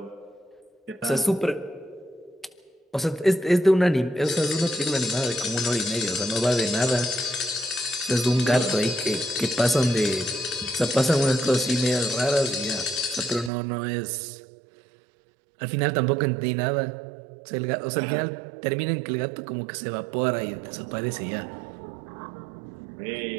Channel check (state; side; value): drops out; left; at 13.5 s